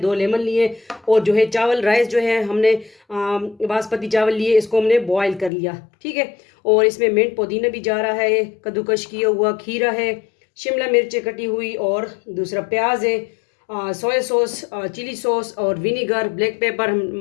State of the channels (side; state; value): right; drops out; at 5.5 s